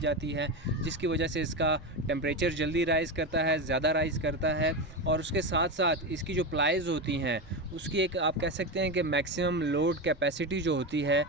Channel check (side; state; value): both; normal; correlation 0.16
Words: है, जिसकी वजह से इसका टेम्परेचर जल्दी राइज़ करता है, ज़्यादा राइज़ करता है। और उसके साथ साथ इसकी जो प्लाइज़ होती हैं उसकी एक, आप कह सकते हैं कि मैक्सिमम लोड कैपेसिटी जो होती है,